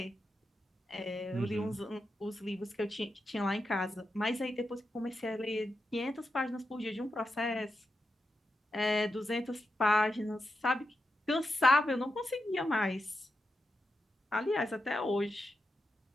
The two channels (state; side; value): normal; both; correlation 0.88